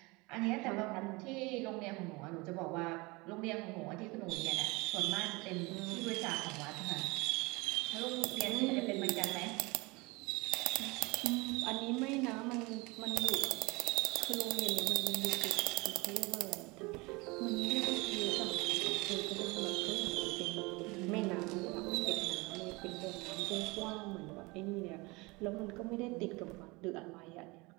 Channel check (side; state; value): left; quieter; 25.0 dB